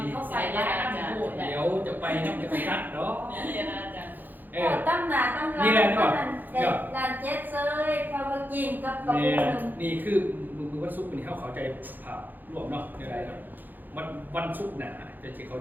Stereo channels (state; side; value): late; left; 0.087 ms